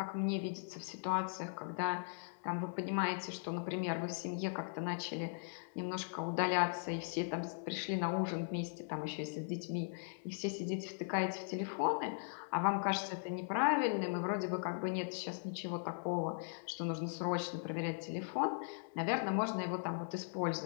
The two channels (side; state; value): right; silent; 52 dB below the other